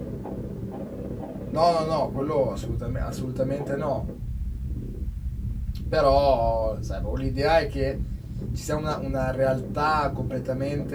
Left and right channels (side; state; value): both; identical; correlation 1.00